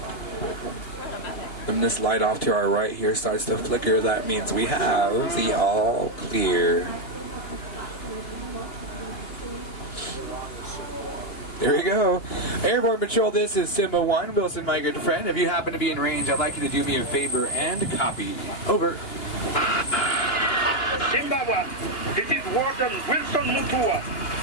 When this light off to our right here starts to flicker, that means we have the all clear. There we go. Airborne Patrol, this is Simba 1. Wilson, my good friend. If you happen to be in range, I'd like you to do me a favor and copy. Over. Simba 1, this is Warden Wilson Mutua.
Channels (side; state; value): right; late; 2.9 ms